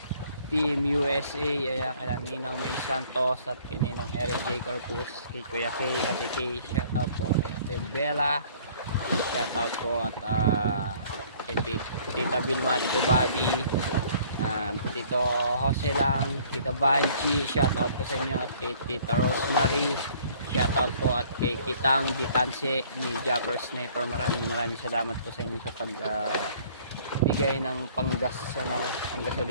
Team USA, ayan, kaya Ninang May Santos at kininong Eric J. Corpus, kay Kuya K, Ate K, shoutout po kay Ate Bella, shoutout po at kay Tita Vilma, Tito Bobby, Tito Jose lang, Tita Banchi, shoutout po sa inyo at kay Tita Rosemary, shoutout po at kay Kitang Ditanse ni Japper Sniper. Maraming salamat po sa inyo sa bigay ng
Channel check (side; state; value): both; inverted; correlation -0.56